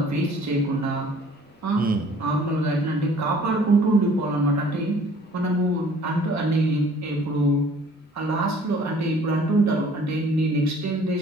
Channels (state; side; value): normal; both; correlation 0.54